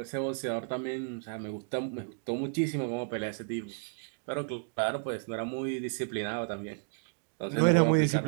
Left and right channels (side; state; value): left; silent; digital silence